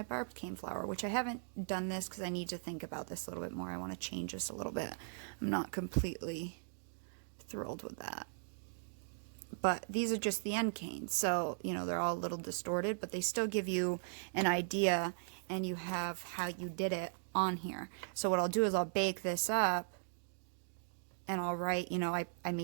barbed cane flower, which I haven't done this because I need to think about this a little bit more. I want to change this a little bit. I'm not completely thrilled with that. But these are just the end canes, so you know they're all a little distorted, but they still give you an idea, and you have how you did it on here. So what I'll do is I'll bake this up, and I'll write, you know, I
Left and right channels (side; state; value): left; silent; digital silence